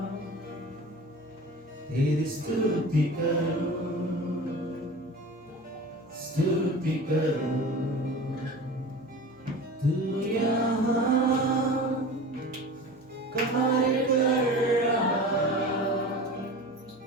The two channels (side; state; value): both; normal; correlation 0.35